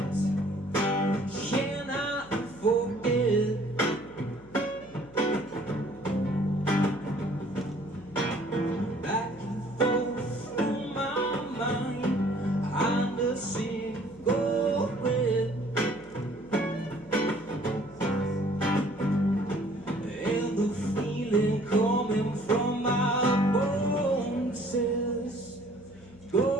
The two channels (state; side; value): noise; left; hum, 23 dB below the sound